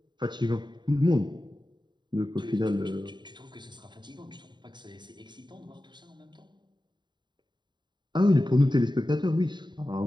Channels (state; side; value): late; left; 0.22 ms